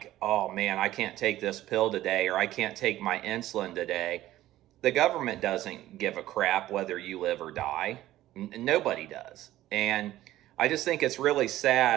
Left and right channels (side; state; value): left; quieter; 14.7 dB